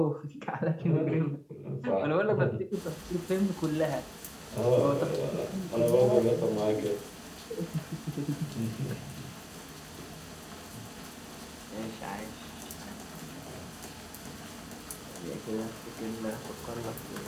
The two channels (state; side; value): identical; both; correlation 1.00